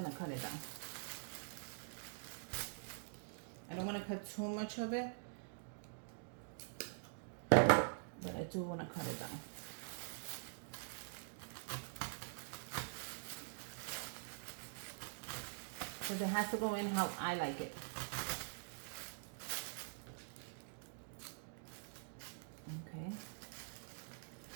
cut it down. I don't want to cut too much of it, but I do want to cut it down. Because it has to go in how I like it. Okay.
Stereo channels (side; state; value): left; silent; digital silence